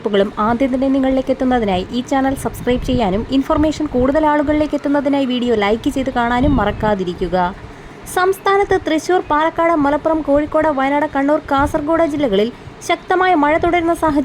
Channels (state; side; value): identical; both; correlation 1.00